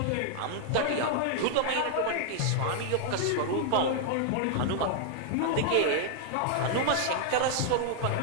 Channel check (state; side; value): different; both; correlation -0.01